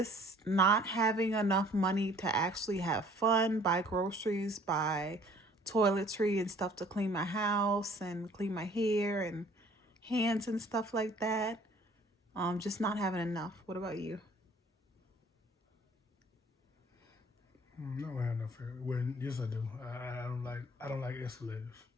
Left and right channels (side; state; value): both; normal; correlation 0.55